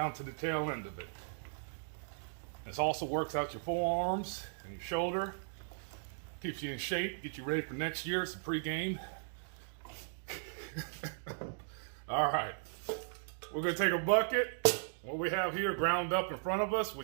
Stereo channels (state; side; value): silent; left; digital silence